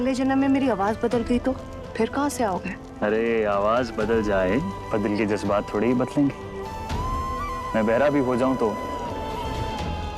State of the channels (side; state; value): both; identical; correlation 1.00